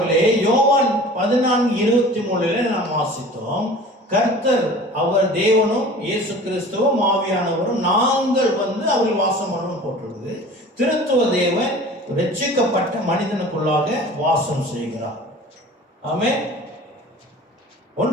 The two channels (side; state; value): both; normal; correlation 0.42